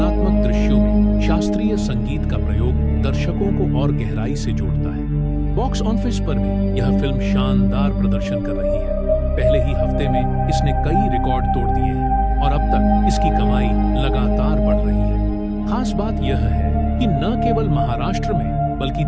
दृश्यों में शास्त्रीय संगीत का प्रयोग दर्शकों को और गहराई से जोड़ता है। बॉक्स ऑफिस पर भी यह फिल्म शानदार प्रदर्शन कर रही है। पहले ही हफ्ते में इसने कई रिकॉर्ड तोड़ दिए हैं और अब तक इसकी कमाई लगातार बढ़ रही है। खास बात यह है कि न केवल महाराष्ट्र में बल्कि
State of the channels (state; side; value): identical; both; correlation 1.00